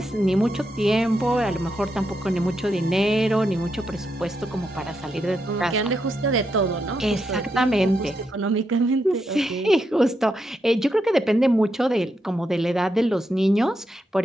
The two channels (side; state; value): both; normal; correlation 0.83